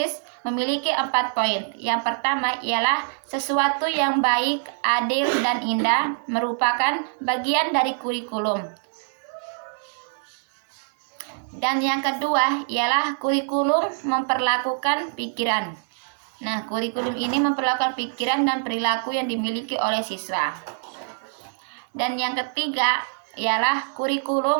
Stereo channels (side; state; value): left; silent; digital silence